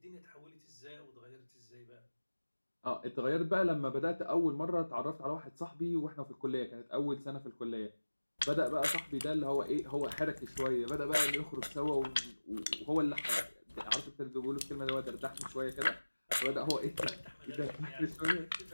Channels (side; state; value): both; inverted; correlation -1.00